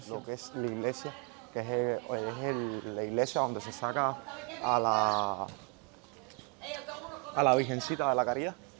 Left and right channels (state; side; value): quieter; left; 33.9 dB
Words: Lo que es la iglesia, que es la iglesia donde se saca a la Virgencita de la Caridad.